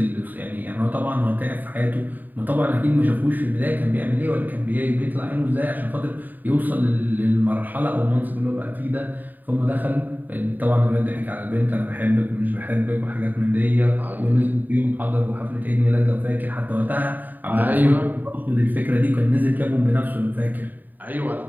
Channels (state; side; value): late; left; 0.087 ms